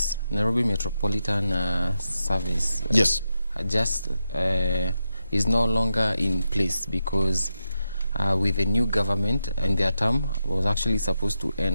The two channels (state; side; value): inverted; both; correlation -0.87